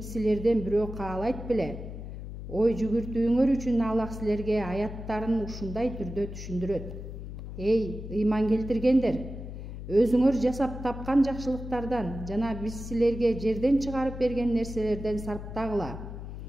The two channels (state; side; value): noise; left; hum, 9 dB below the sound